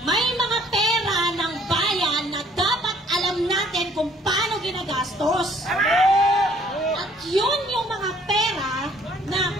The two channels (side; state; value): both; normal; correlation 0.60